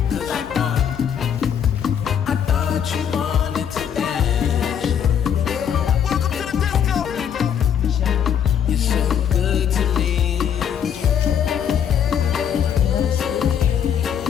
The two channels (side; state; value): right; quieter; 8.5 dB